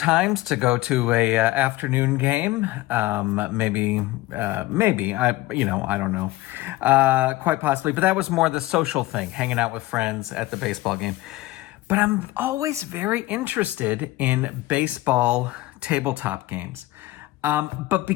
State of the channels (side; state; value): right; quieter; 18.1 dB